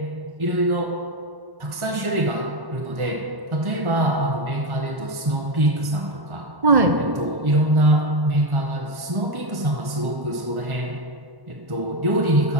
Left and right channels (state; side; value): late; left; 1.1 ms